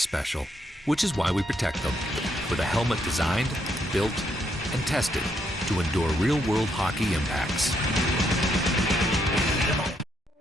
which is why we protect them with a helmet designed, built, and tested to endure real-world hockey impacts.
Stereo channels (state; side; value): normal; both; correlation 0.75